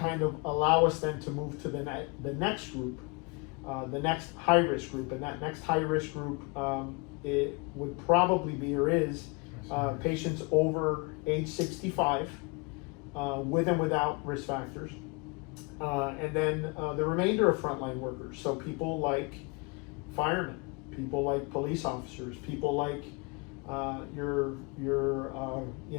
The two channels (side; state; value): right; quieter; 30.0 dB